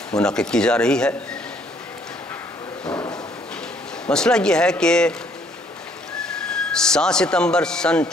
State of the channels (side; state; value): both; normal; correlation 0.64